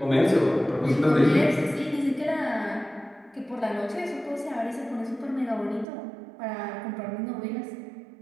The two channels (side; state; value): left; drops out; at 5.9 s